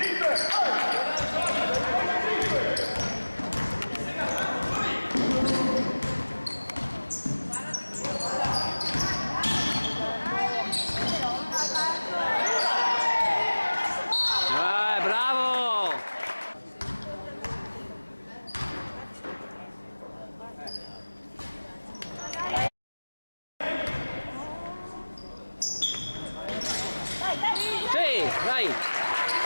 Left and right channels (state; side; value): inverted; both; correlation -1.00